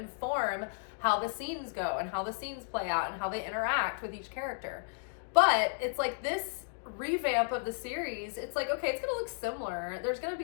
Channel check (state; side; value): silent; right; digital silence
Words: how the scenes go and how the scenes play out and how they interact with each character. But it's like this revamp of the series, it's like, okay, it's going to look similar. There's going to